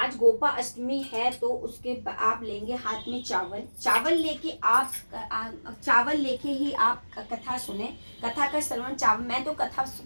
गोपा अष्टमी है, तो उसके आप लेंगे हाथ में चावल लेके आप चावल लेके ही आप कथा सुने। कथा का श्रवण चावल, मैं तो कथा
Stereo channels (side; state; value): both; inverted; correlation -1.00